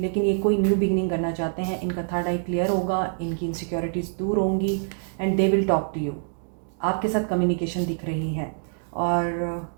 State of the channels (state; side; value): silent; left; digital silence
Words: ये कोई न्यू बिगनिंग करना चाहते हैं, इनका थर्ड आई क्लियर होगा, इनकी इनसिक्योरिटीज़ दूर होंगी and they will talk to you. आपके साथ कम्युनिकेशन दिख रही है। और